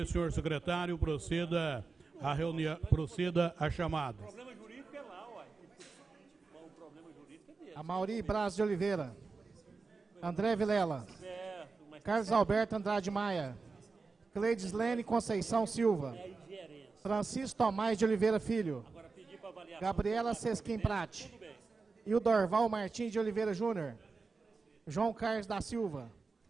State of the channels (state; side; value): quieter; left; 4.3 dB